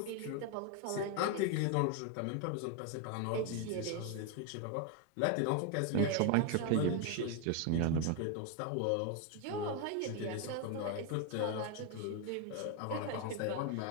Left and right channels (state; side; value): different; both; correlation 0.01